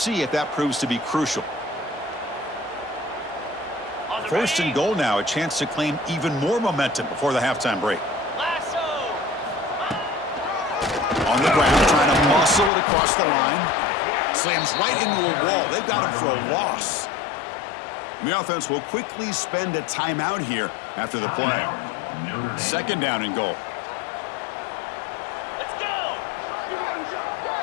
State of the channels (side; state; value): right; drops out; at 12.7 s